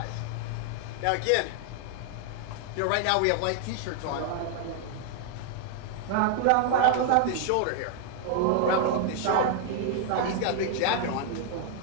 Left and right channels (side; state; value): both; different; correlation 0.00